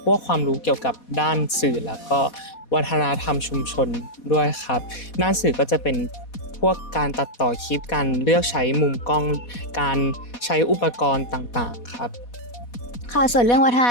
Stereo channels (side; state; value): right; late; 4.2 ms